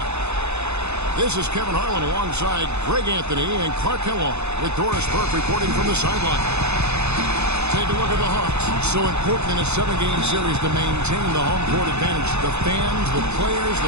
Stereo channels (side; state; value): left; late; 0.81 ms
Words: This is Kevin Harlan alongside Greg Anthony and Clark Kellogg with Doris Burke reporting from the sideline. Take a look at the Hawks. So important in a 7-game series to maintain the home court advantage. The fans, the players,